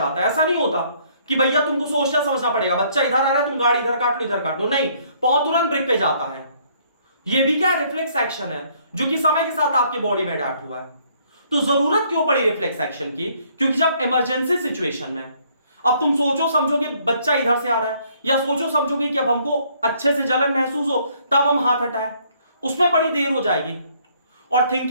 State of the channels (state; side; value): inverted; both; correlation -0.65